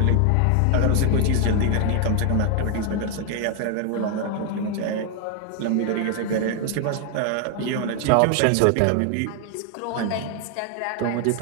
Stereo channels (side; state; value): both; different; correlation 0.00